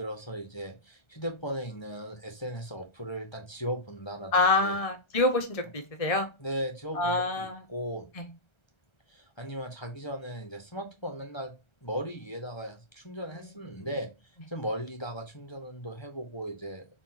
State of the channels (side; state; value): right; late; 1.3 ms